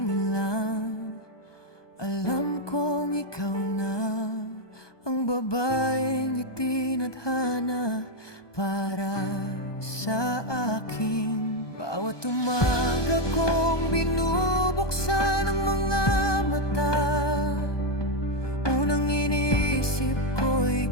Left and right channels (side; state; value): right; late; 1.2 ms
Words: lang, alam kong ikaw na ang babaeng itinadhana para sa akin. Bawat umaga kong binubuksan ang mga mata, unang iniisip ko